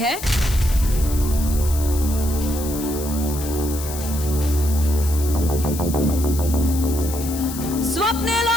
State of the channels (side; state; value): left; noise; hiss, 10 dB below the sound